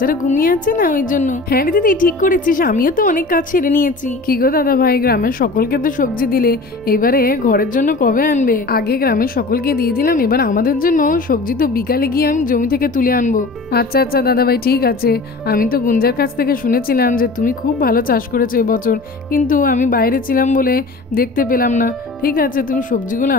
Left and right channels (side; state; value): right; quieter; 3.4 dB